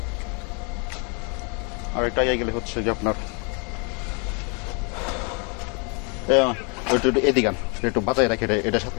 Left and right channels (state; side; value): quieter; right; 34.9 dB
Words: হচ্ছে যে আপনার এদিকে একটু বাঁচাই রাখে, এটার